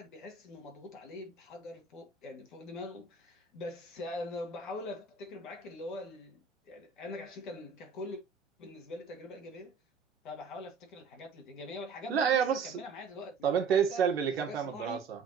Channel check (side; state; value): left; quieter; 5.5 dB